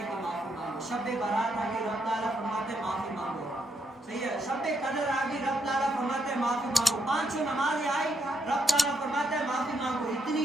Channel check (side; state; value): both; normal; correlation 0.77